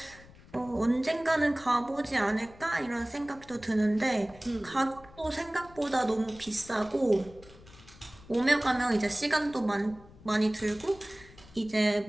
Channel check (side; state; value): left; noise; rumble, 22 dB below the sound